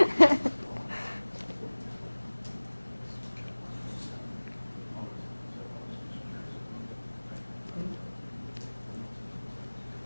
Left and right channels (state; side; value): inverted; both; correlation -1.00